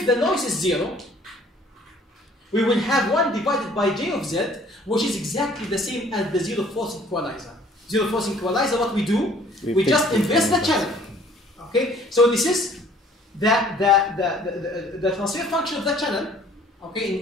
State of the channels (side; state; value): both; normal; correlation 0.56